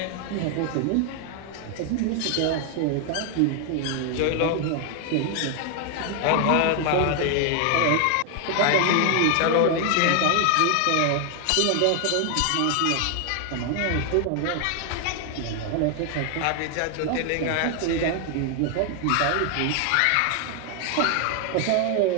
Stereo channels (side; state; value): both; different; correlation 0.00